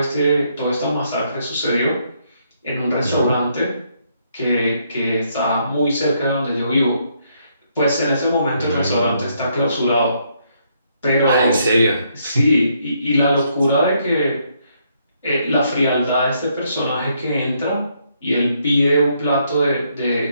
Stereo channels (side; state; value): both; inverted; correlation -0.73